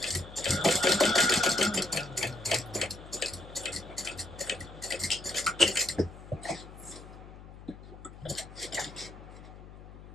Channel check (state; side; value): noise; left; hum, 16 dB below the sound